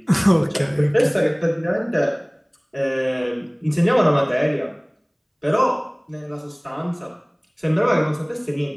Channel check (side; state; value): both; identical; correlation 1.00